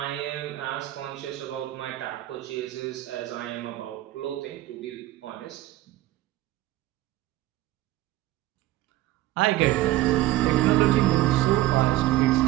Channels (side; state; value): left; quieter; 15.9 dB